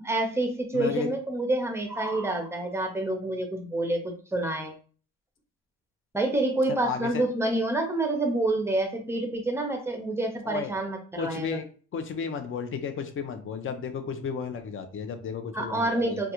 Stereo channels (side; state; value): both; normal; correlation 0.58